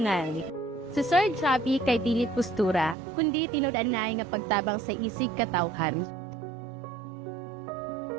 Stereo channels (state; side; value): drops out; left; at 3.0 s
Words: Si Sir Javi kay dili postura, kundi tinud-anay nga pagtabang sa isig katawhan.